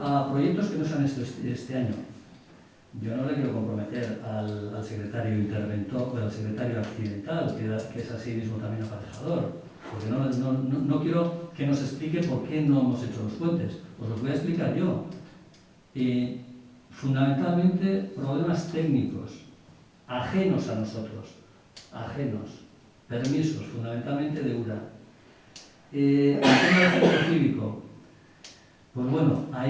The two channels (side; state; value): both; identical; correlation 1.00